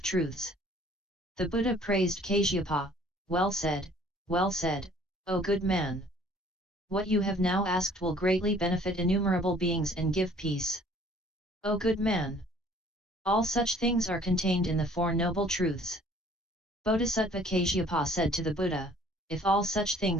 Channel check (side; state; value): both; normal; correlation 0.56